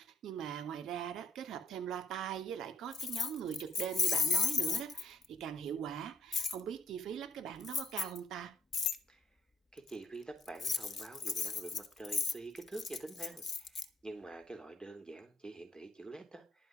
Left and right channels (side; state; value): both; normal; correlation 0.67